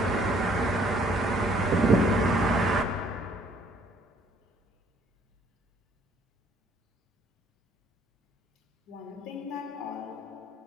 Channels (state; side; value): normal; both; correlation 0.62